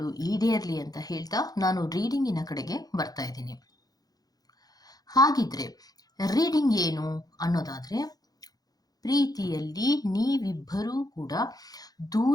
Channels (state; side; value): late; right; 0.19 ms